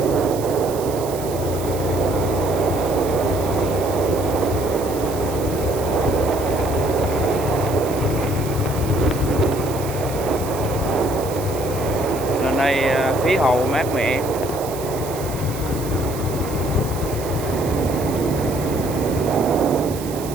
Lên đây khí hậu mát mẻ.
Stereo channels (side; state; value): right; noise; hiss, 13 dB below the sound